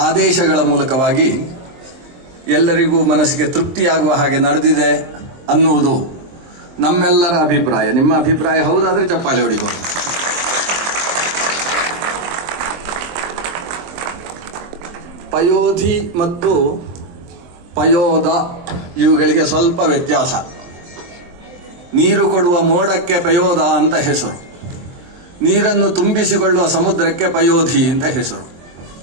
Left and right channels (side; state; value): left; late; 23 ms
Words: ಆದೇಶಗಳ ಮೂಲಕವಾಗಿ ಎಲ್ಲರಿಗೂ ಮನಸ್ಸಿಗೆ ತೃಪ್ತಿಯಾಗುವ ಹಾಗೆ ನಡೆದಿದೆ ಅನ್ನುವುದು ನಮ್ಮೆಲ್ಲರ ಅಭಿಪ್ರಾಯ. ನಿಮ್ಮ ಅಭಿಪ್ರಾಯ ಹೌದಾದ್ರೆ ಚಪ್ಪಾಳೆ ಹೊಡಿಬಹುದು. ಪಯೋಧಿ ಮತ್ತು ಪಯೋದ ಇವುಗಳಿಗೆ ಸ್ವಲ್ಪ ವ್ಯತ್ಯಾಸ. ನೀರು ಕೊಡುವ ಮೋಡಕ್ಕೆ ಪಯೋದ ಅಂತ ಹೆಸರು, ನೀರನ್ನು ತುಂಬಿಸಿಕೊಳ್ಳುವ ಸಮುದ್ರಕ್ಕೆ ಪಯೋಧಿ ಅಂತ ಹೆಸರು.